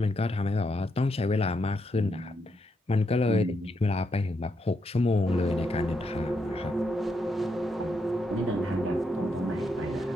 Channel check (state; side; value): normal; both; correlation 0.80